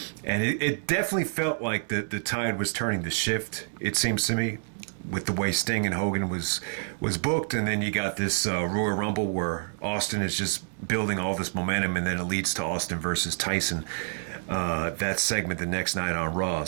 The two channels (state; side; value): silent; left; 59 dB below the other